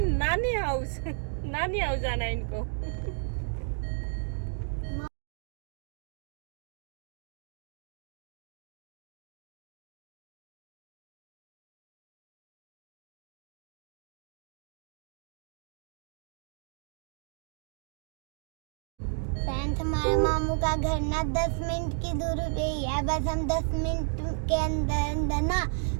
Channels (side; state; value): left; silent; 56 dB below the other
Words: हाउस। नानी हाउस जाना है इनको। फ्रेंड्स, हमारे मामू का घर ना 10 मिनट की दूरी पे ही है। बस हम 10 मिनट के अंदर ना